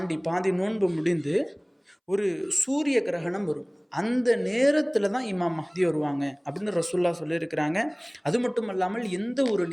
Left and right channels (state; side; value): identical; both; correlation 1.00